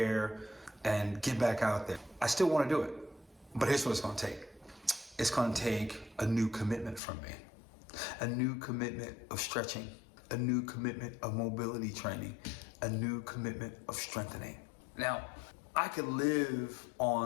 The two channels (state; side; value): drops out; right; at 7.0 s